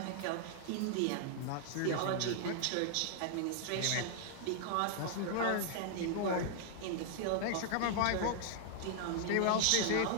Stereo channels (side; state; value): both; different; correlation -0.01